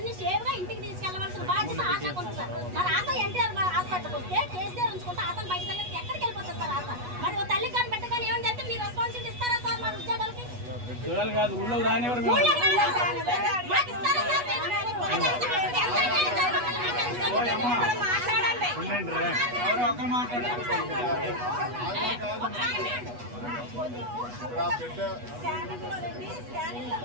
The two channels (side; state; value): left; late; 8.2 ms